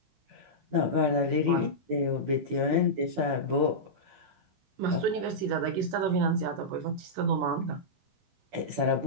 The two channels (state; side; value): late; left; 16 ms